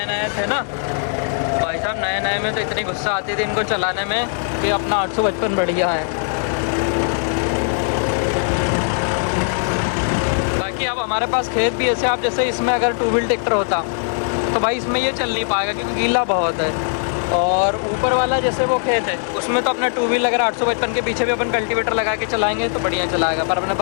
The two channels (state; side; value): silent; right; digital silence